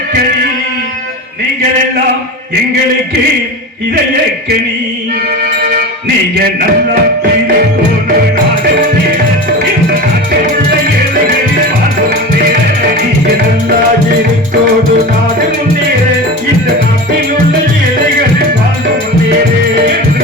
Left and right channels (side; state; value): both; normal; correlation 0.29